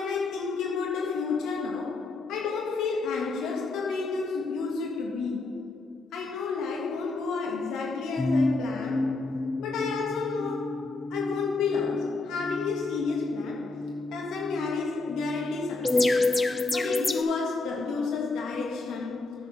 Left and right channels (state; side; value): quieter; right; 3.5 dB